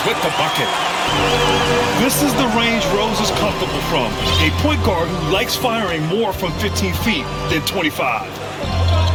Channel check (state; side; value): identical; both; correlation 1.00